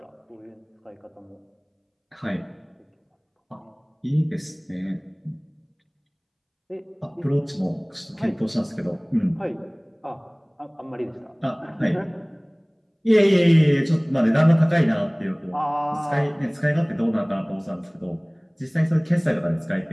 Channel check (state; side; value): identical; both; correlation 1.00